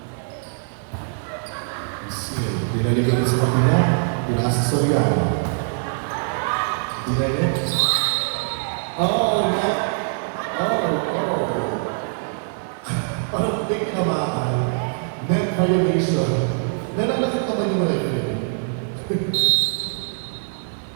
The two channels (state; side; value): silent; left; 64 dB below the other